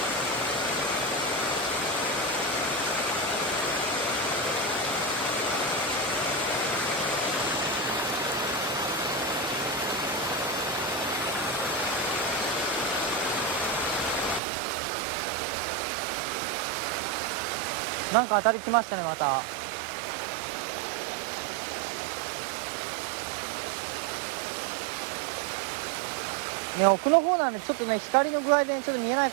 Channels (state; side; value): drops out; left; at 14.4 s